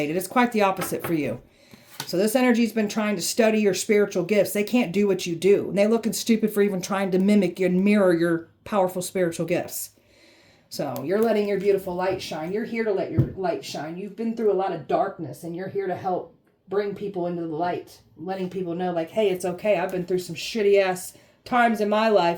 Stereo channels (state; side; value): identical; both; correlation 1.00